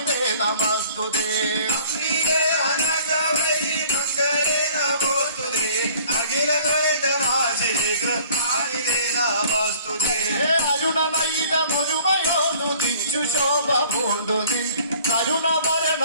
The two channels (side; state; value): both; inverted; correlation -0.52